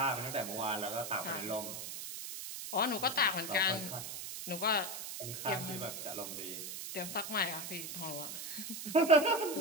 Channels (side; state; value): right; noise; hiss, 7 dB below the sound